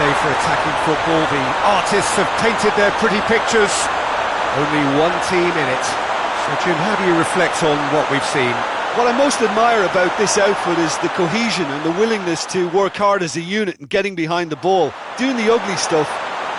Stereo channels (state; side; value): identical; both; correlation 1.00